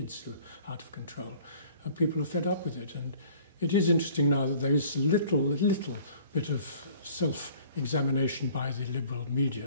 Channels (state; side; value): inverted; both; correlation -0.51